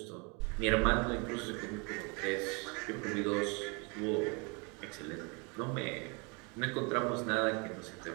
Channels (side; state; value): left; quieter; 31.7 dB